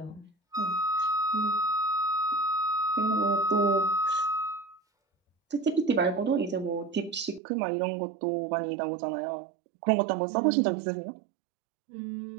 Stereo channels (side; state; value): left; drops out; at 7.4 s